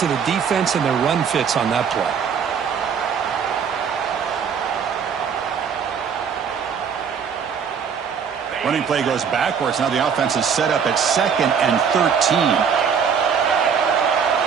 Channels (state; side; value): quieter; left; 6.9 dB